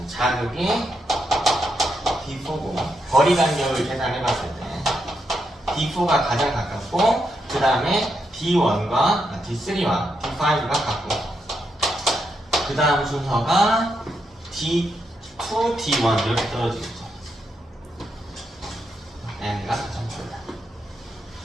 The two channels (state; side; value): normal; both; correlation 0.82